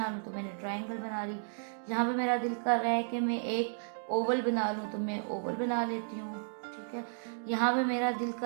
लूँ, तो मैंने ट्राइंगल बना ली। यहाँ पे मेरा दिल कर रहा है कि मैं एक ओवल बना लूँ, तो मैं ओवल बना लेती हूँ, ठीक है। यहाँ पे मेरा दिल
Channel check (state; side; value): silent; left; digital silence